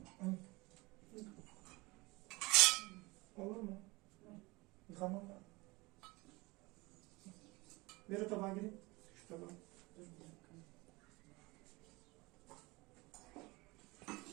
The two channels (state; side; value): quieter; left; 23.5 dB